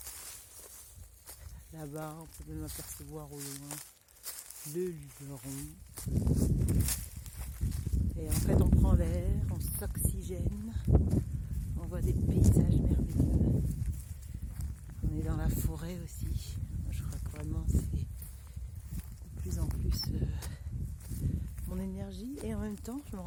là-bas on peut même apercevoir au loin le Luberon. Et en fait on prend l'air, on s'oxygène, on voit des paysages merveilleux. On est dans la forêt aussi. Je crois que vraiment c'est de plus en plus mon énergie, et en même temps je me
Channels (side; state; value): both; identical; correlation 1.00